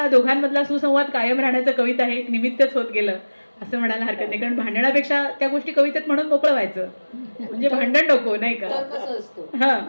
दोघांमधला सुसंवाद कायम राहण्याचं कविता हे एक निमित्तच होत गेलं असं म्हणायला हरकत नाही. कारण भांडणापेक्षा त्या गोष्टी कवितेत म्हणून मोकळं व्हायचं, म्हणजे भांडण नको, नाही का. हा,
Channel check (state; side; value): inverted; both; correlation -1.00